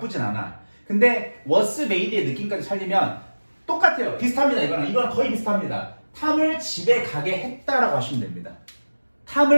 않아. 근데 was made의 느낌까지 살리면 똑같아요. 비슷합니다. 이거는 거의 비슷합니다. 탐을 집에 가게 했다라고 하시면 됩니다.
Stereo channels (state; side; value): inverted; both; correlation -1.00